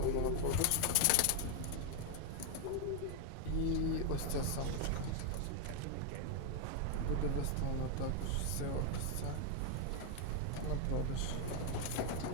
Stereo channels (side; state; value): both; different; correlation 0.01